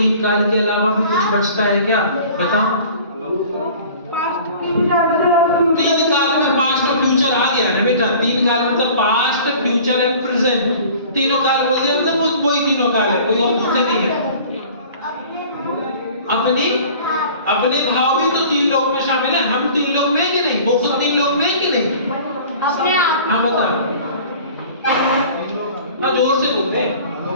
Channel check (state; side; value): inverted; both; correlation -0.46